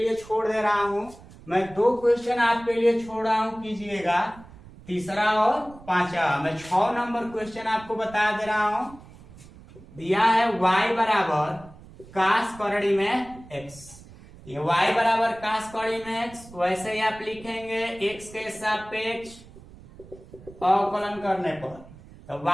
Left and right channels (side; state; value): right; noise; rumble, 20 dB below the sound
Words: छोड़ दे रहा हूं, मैं 2 क्वेश्चन आपके लिए छोड़ रहा हूं, कीजिएगा, तीसरा और 5वां। मैं 6 नंबर क्वेश्चन आपको बता दे रहा हूं। दिया है y बराबर कास करड़ी में x। ये y बराबर कास करड़ी में x, वैसे ही आप लिखेंगे x के सापेक्ष अवकलन करने पर। तो